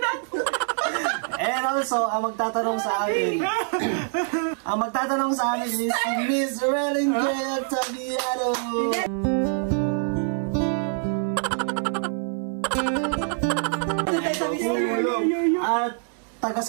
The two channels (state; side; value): silent; left; 60 dB below the other